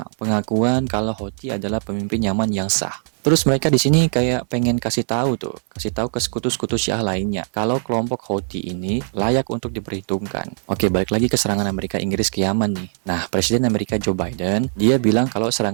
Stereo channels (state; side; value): silent; left; 65 dB below the other